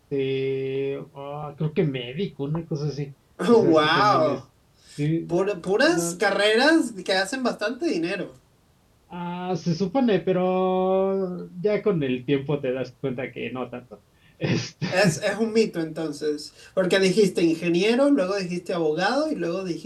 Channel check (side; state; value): both; identical; correlation 1.00